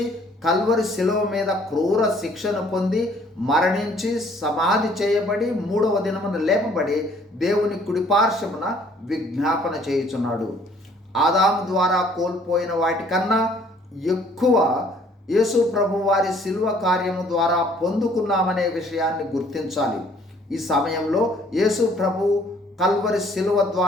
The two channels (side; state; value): both; normal; correlation 0.60